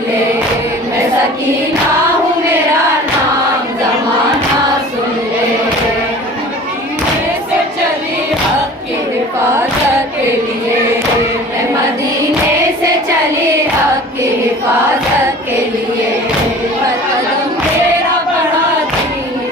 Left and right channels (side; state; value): both; normal; correlation 0.43